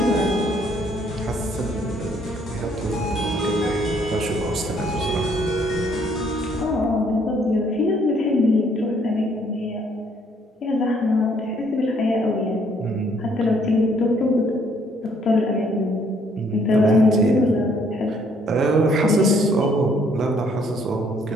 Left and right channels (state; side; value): normal; both; correlation 0.65